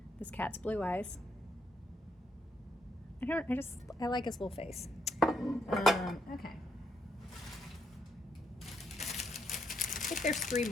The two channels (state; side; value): normal; both; correlation 0.76